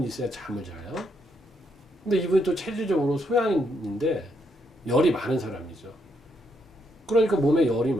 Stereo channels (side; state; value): both; normal; correlation 0.77